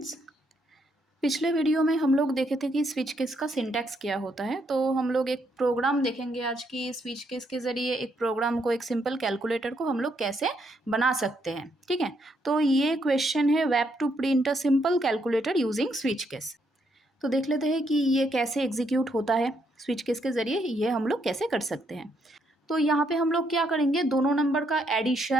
पिछले वीडियो में हम लोग देखे थे कि स्विच केस का सिंटैक्स क्या होता है। तो हम लोग एक प्रोग्राम देखेंगे आज की स्विच केस के ज़रिए एक प्रोग्राम को, एक सिंपल कैलकुलेटर को हम लोग कैसे बना सकते हैं। ठीक है, तो ये क्वेश्चन है web two print a simple calculator using switch case. तो देख लेते हैं कि ये कैसे एग्जीक्यूट होता है। स्विच केस के ज़रिए ये हम लोग कैसे कर सकते हैं। तो यहाँ पे हम लोग क्या करेंगे, दोनों नंबर का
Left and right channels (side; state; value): both; normal; correlation 0.75